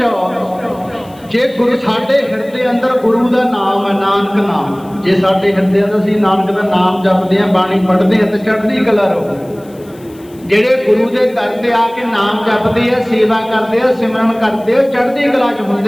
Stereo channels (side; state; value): left; noise; hiss, 27 dB below the sound